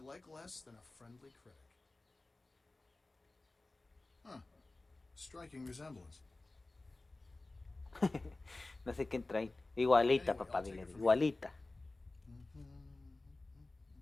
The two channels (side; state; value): right; quieter; 3.1 dB